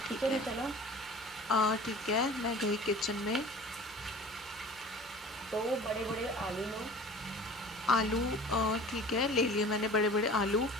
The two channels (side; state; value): both; normal; correlation 0.42